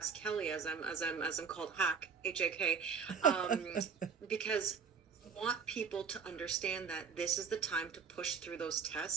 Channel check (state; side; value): quieter; left; 6.1 dB